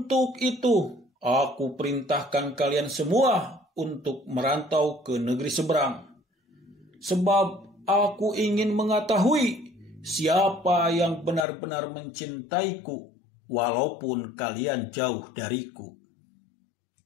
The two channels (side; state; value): right; drops out; at 11.5 s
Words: itu, aku perintahkan kalian semua untuk merantau ke negeri seberang. Sebab aku ingin mengetahui siapa yang benar-benar mencintaiku, walaupun kalian jauh dariku.